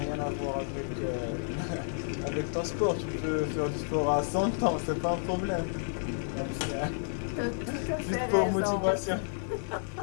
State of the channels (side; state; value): right; silent; 57 dB below the other